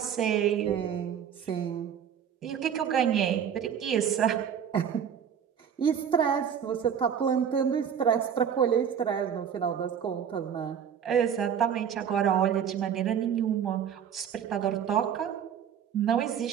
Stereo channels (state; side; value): quieter; left; 8.3 dB